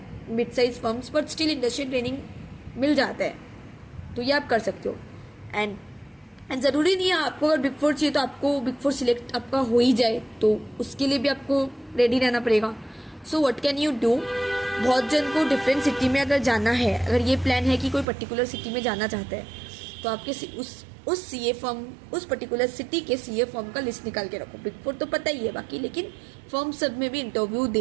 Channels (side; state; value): left; drops out; at 18.1 s